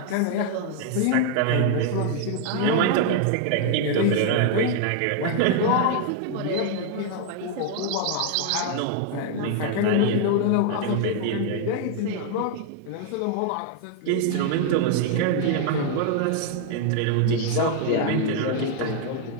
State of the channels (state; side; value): different; both; correlation 0.00